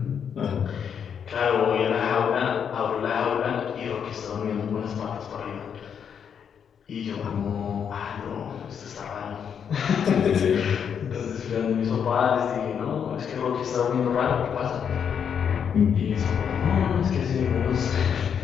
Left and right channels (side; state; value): right; quieter; 7.6 dB